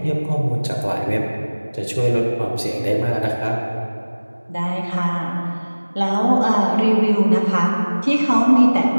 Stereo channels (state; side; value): inverted; both; correlation -1.00